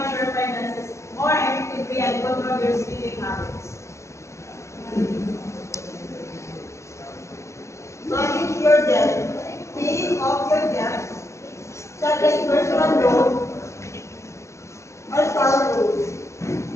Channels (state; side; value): late; right; 0.14 ms